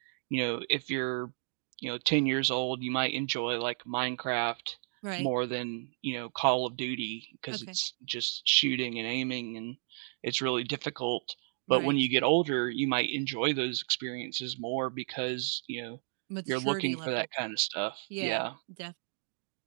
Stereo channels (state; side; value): silent; left; digital silence